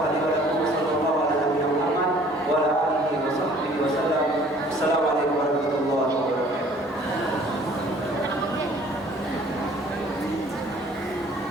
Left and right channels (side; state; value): both; normal; correlation 0.54